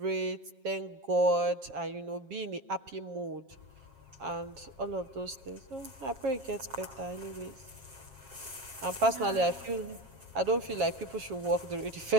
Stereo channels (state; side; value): late; left; 7.4 ms